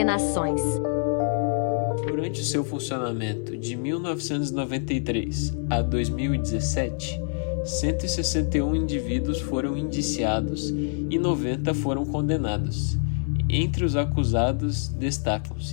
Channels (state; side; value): silent; right; 60 dB below the other